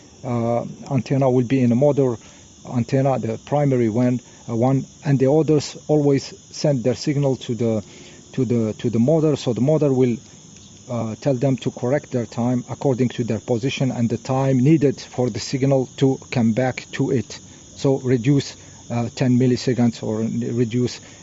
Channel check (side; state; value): both; identical; correlation 1.00